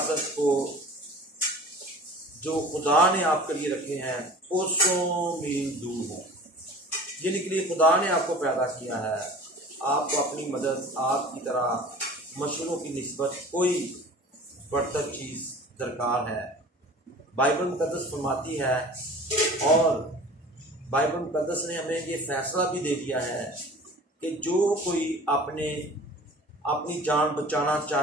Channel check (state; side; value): normal; both; correlation 0.42